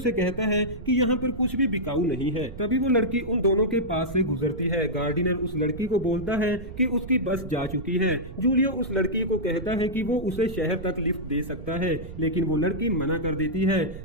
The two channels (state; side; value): noise; right; rumble, 12 dB below the sound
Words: कहता है कि यहाँ पर कुछ भी बिकाऊ नहीं है। तभी वो लड़की उन दोनों के पास से गुजरती है। गार्डनर उस लड़की को बोलता है कि उसकी बस जा चुकी है। जूलियो उस लड़की को कहता है कि वो उसे शहर तक लिफ्ट दे सकता है, लेकिन वो लड़की मना कर देती है।